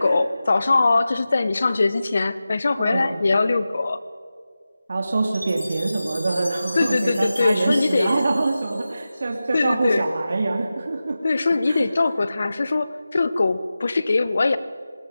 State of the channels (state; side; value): inverted; both; correlation -0.94